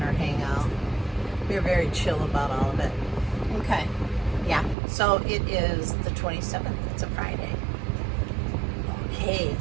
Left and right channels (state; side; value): drops out; left; at 4.8 s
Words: or hang out. We were very chill about all of it. Okay. Yeah, so it is the 27th. It's a Friday. Okay,